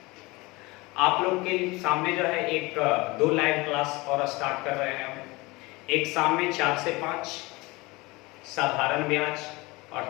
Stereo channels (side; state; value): right; quieter; 23.1 dB